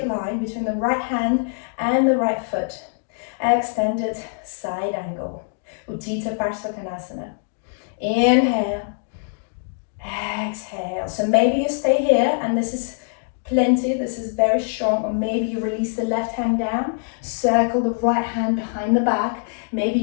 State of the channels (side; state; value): right; silent; digital silence